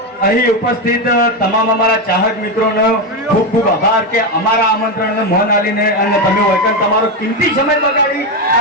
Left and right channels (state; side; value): normal; both; correlation 0.11